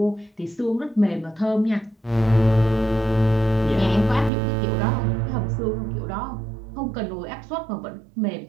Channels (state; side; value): drops out; left; at 4.3 s